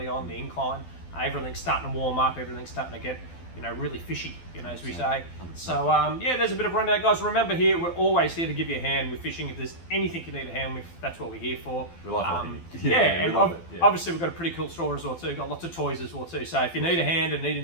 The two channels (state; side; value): late; right; 12 ms